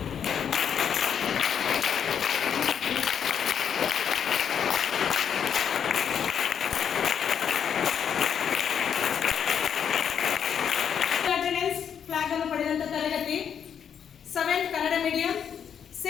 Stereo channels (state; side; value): quieter; right; 8.0 dB